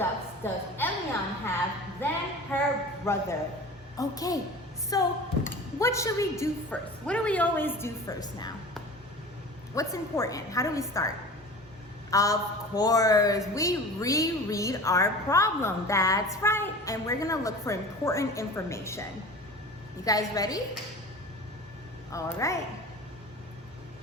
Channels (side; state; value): both; normal; correlation 0.37